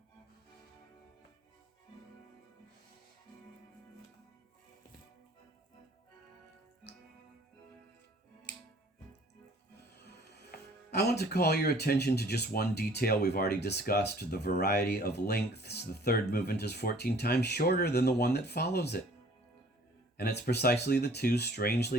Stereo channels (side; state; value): both; normal; correlation 0.54